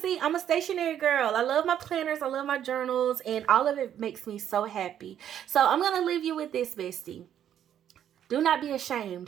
I'm a stationary girl. I love my planners, I love my journals, and all of it makes me so happy. So I'm gonna leave you with this, bestie. Do not be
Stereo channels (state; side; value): quieter; left; 10.1 dB